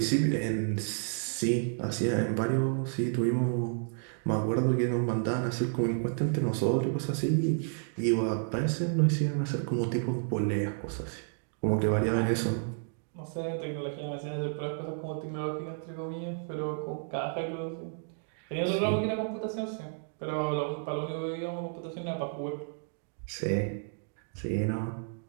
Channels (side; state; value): left; silent; digital silence